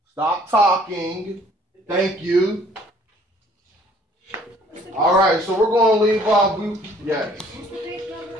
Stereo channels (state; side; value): normal; both; correlation 0.58